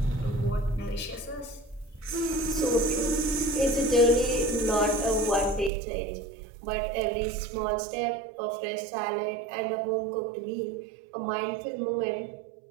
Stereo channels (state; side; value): drops out; left; at 5.7 s